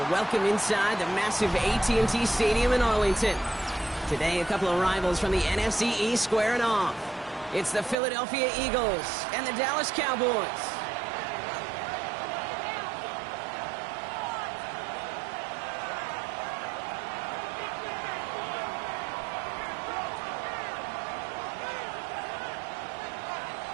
welcome inside the massive AT&T Stadium in Arlington. Today, a couple of rivals from the NFC East squaring off. It's the Philadelphia Eagles and the Dallas Cowboys.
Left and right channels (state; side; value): drops out; left; at 8.0 s